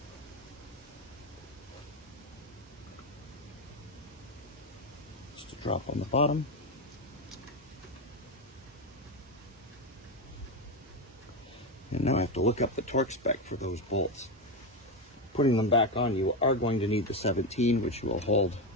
Just a drop on the bottom. And now I have to look up the torque spec for those bolts. Putting them back on, you are going to need the 17, which will hold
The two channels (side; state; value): both; normal; correlation 0.12